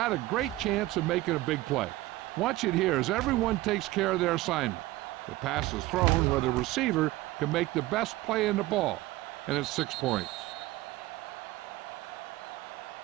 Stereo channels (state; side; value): quieter; left; 18.0 dB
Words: a great chance of making a big play. Watch it here as everyone takes care of their assignment. The pass is thrown where the receiver can make the best play in the ball, and it's 6 points.